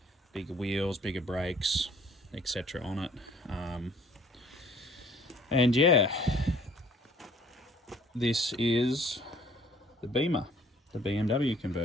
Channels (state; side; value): normal; both; correlation 0.56